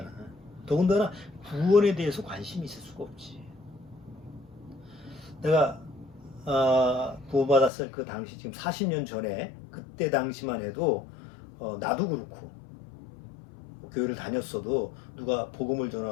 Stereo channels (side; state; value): right; drops out; at 7.7 s